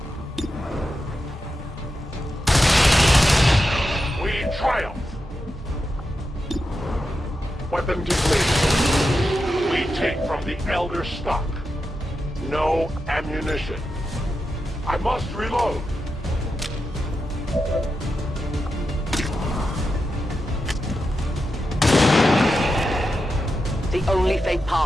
We triumph. Weapon depleted. We take from the Elder stock. No ammunition. I must reload. The the only fate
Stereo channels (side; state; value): both; normal; correlation 0.88